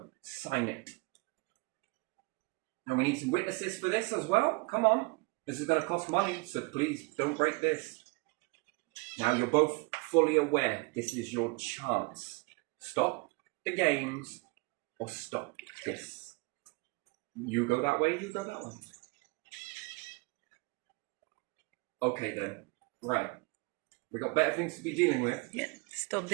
Sign it. Now, we need some witnesses for this as well. Come on. This is going to cost money, so please don't break this. Now, you're both fully aware this is your chance. Stop the games. Or stop this. You go that way, you go that way. Okay then. Right. We got better things to be dealing with. Stop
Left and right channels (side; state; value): left; quieter; 27.5 dB